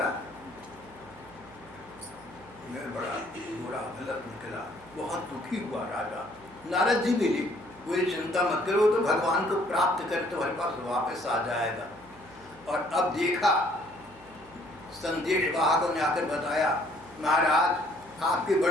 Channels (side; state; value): right; noise; hum, 25 dB below the sound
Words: मैं बड़ा बुरा गलत निकला। बहुत दुखी हुआ राजा। नारद जी मिले, कोई चिंता मत करो, तो भगवान को प्राप्त कर तुम्हारे पास वापस आ जाएगा। और अब देखा, संदेश वाहकों ने आकर बताया, महाराज आपके